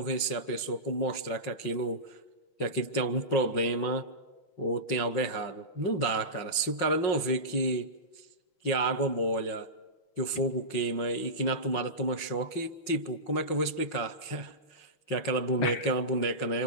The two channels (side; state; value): right; late; 5.6 ms